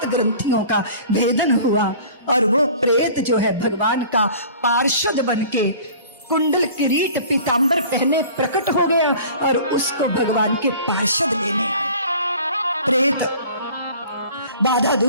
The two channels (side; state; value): both; inverted; correlation -0.45